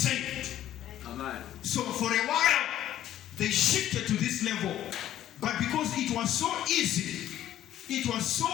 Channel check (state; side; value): quieter; right; 12.3 dB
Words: Amen. So for a while, they shifted to this level. But because it was so easy